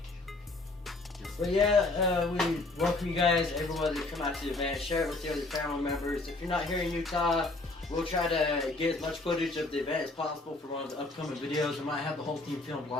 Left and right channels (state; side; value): quieter; right; 3.1 dB